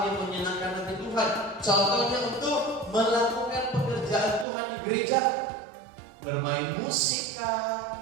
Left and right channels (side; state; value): left; drops out; at 4.5 s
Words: yang menyenangkan hati Tuhan. Contohnya untuk melakukan pekerjaan Tuhan di gereja, bermain musik kah,